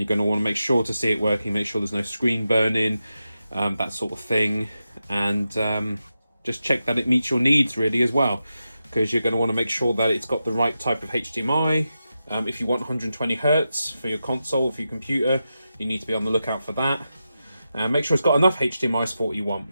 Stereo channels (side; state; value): both; inverted; correlation -0.90